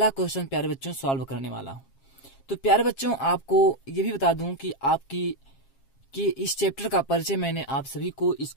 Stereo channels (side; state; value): right; late; 7.4 ms